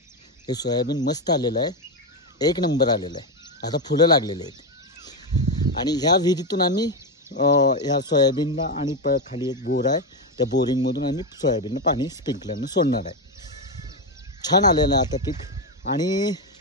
हे सोयाबीन मस्त आलेलं आहे. 1 नंबर आलेलं आहे. आता फुलं लागलेले आहेत. आणि ह्या विहिरीतून आम्ही ह्या सोयाबीनला आणि खाली एक बोर आहे, त्या बोरिंगमधून आम्ही सोयाबीनला पाणी स्प्रिंकलरनं सोडणार आहे. छान आलेलं आहे आता पीक. आणि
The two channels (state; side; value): normal; both; correlation 0.09